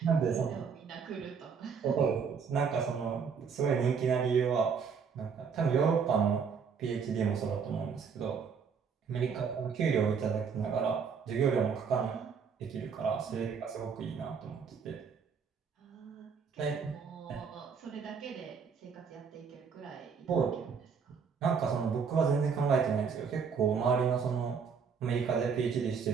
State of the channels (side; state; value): left; quieter; 6.2 dB